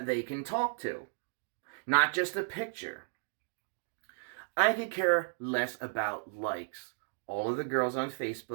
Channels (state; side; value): silent; left; digital silence